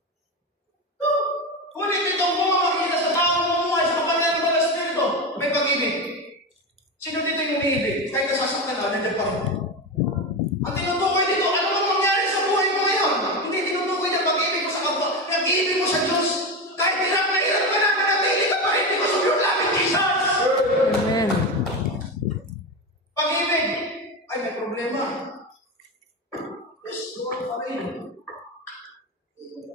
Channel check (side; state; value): both; normal; correlation 0.18